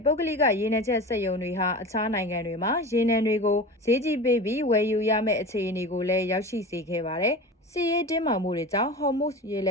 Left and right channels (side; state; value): both; normal; correlation 0.32